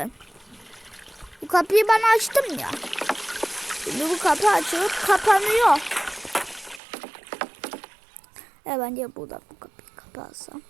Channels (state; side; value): drops out; left; at 6.8 s